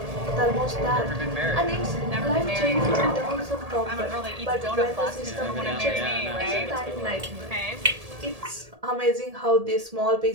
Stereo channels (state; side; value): late; left; 1.8 ms